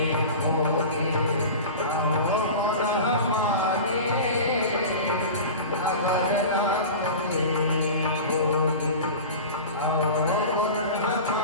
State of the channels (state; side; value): inverted; both; correlation -0.33